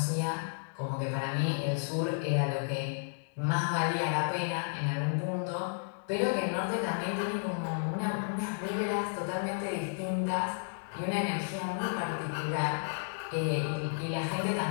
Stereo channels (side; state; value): right; silent; digital silence